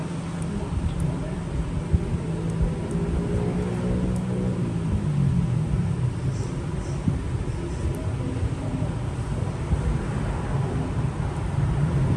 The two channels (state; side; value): identical; both; correlation 1.00